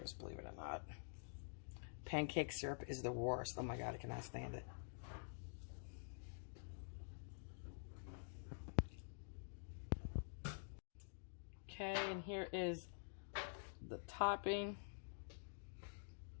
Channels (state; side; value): silent; right; digital silence